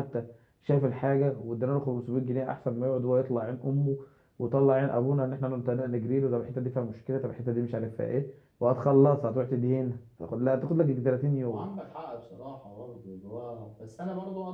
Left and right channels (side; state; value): both; identical; correlation 1.00